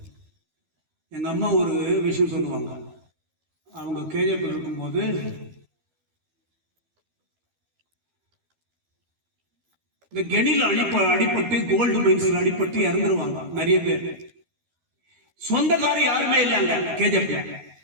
எங்க அம்மா ஒரு விஷயம் சொல்லுவாங்க. அவங்க கேஜிஎஃப் இருக்கும்போது இந்த கெனில அடிபட்டு கோல்டு மைன்ஸ்ல அடிபட்டு இறந்துருவாங்க நிறைய பேர். சொந்தக்காரர் யாருமே இல்லைங்க கேஜிஎஃப்ல.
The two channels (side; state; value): left; late; 12 ms